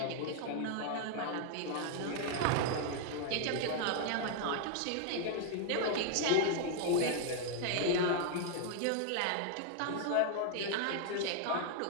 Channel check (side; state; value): both; different; correlation 0.00